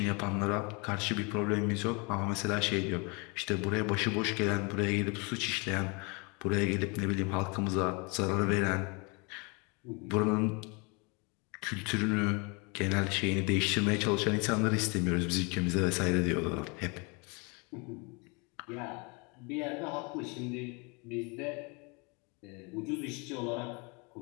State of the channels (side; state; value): right; quieter; 30.9 dB